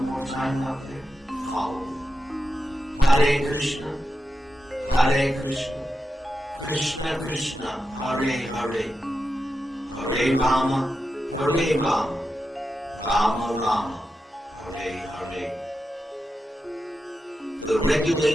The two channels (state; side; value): normal; both; correlation 0.89